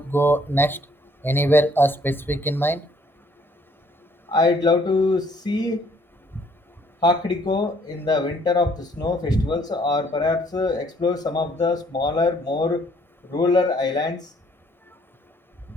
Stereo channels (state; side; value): normal; both; correlation 0.63